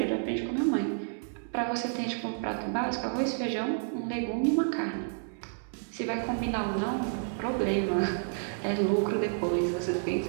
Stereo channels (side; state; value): left; silent; digital silence